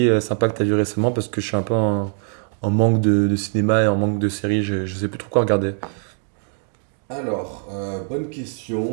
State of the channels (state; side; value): silent; left; 55 dB below the other